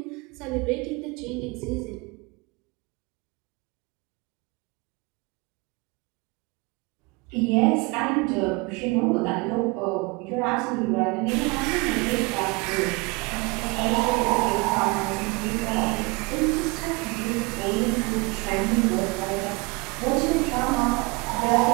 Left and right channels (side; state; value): left; quieter; 27.1 dB